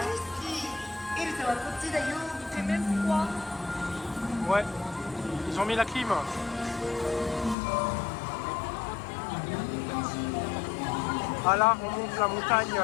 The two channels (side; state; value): right; drops out; at 7.6 s